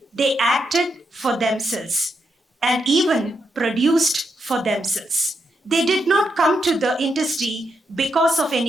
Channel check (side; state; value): both; normal; correlation 0.82